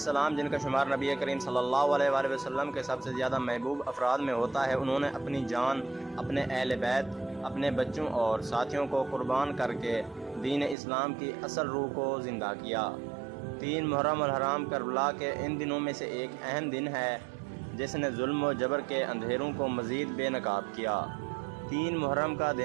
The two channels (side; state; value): left; drops out; at 10.8 s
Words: جن کا شمار نبی کریم صلی اللہ علیہ وآلہ وسلم کے سب سے زیادہ محبوب افراد میں ہوتا ہے، انہوں نے اپنی جان، اپنے اہل بیت، اپنے بچوں اور ساتھیوں کو قربان کر کے دین اسلام کی اصل روح کو زندہ کیا۔ 3 محرم الحرام کربلا کے ان دنوں میں سے ایک اہم دن ہے جس نے ظلم و جبر کے اندھیروں کو مزید بے نقاب کیا۔ 3 محرم کا